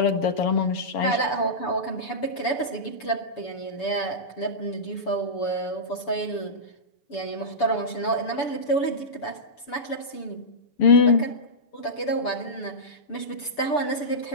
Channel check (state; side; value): late; right; 6.9 ms